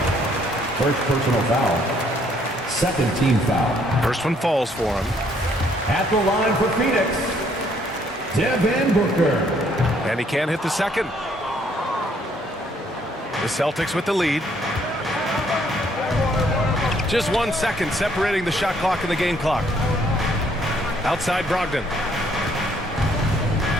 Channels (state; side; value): normal; both; correlation 0.66